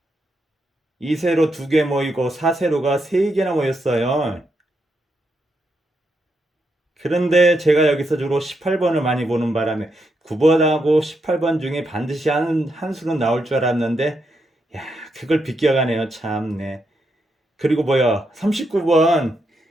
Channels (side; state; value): both; normal; correlation 0.81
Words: 2세로 2개 모이고 4세로가 3개나 모였어요. 그런데 제가 여기서 주로 18번을 많이 보는 바람에 9번하고 18번 중에 반드시 한 수는 나올 줄 알았는데, 야, 그걸 비껴가네요. 참네. 그리고 뭐야, 39번